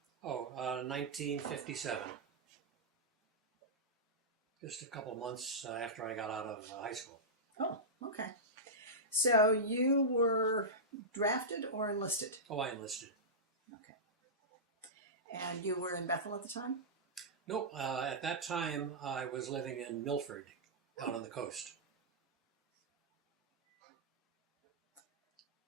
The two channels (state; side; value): normal; both; correlation -0.13